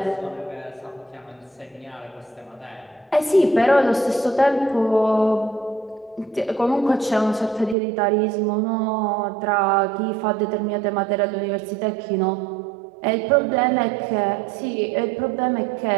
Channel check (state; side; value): drops out; left; at 7.8 s